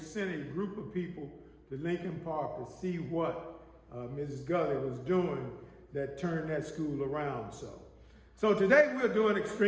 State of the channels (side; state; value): both; identical; correlation 1.00